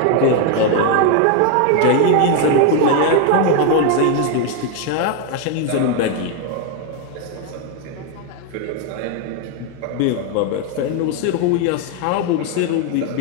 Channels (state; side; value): different; both; correlation 0.01